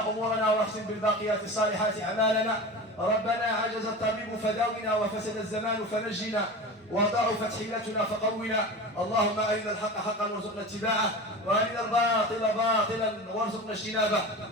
أمورنا واختم بالباقيات الصالحات أعمالنا ربنا عجز الطبيب فداونا وفسد الزمان فنجنا وضعفت حيلتنا فقونا اللهم أرنا الحق حقا وارزقنا اتباعه وأرنا الباطل باطلا وارزقنا اجتنابه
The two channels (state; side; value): normal; both; correlation 0.31